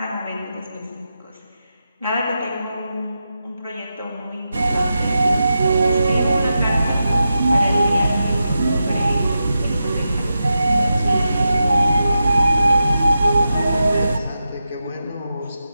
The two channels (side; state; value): both; inverted; correlation -0.89